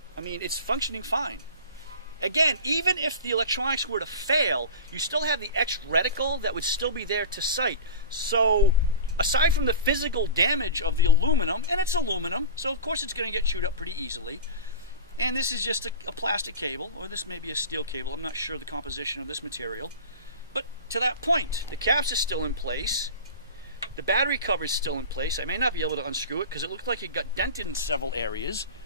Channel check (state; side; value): inverted; both; correlation -0.32